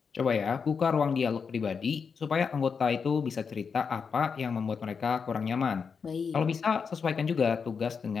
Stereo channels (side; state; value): right; quieter; 5.9 dB